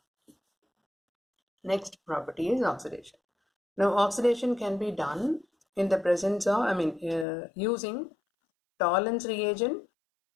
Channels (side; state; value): right; drops out; at 7.2 s